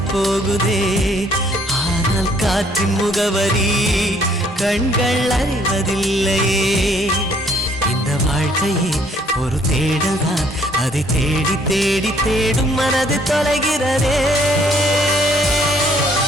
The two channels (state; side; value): normal; both; correlation 0.63